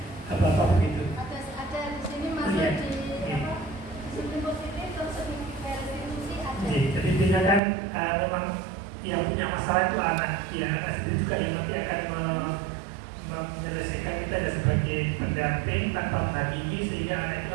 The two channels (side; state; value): left; drops out; at 7.6 s